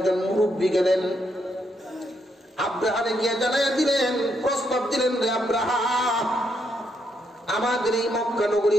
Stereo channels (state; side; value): normal; both; correlation 0.77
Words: মুরব্বী গেলেন। আব্রাহারে গিয়ে জানাইয়া দিলেন, প্রস্তাব দিলেন, রে আব্রাহা, আমাদের এই মক্কা নগরী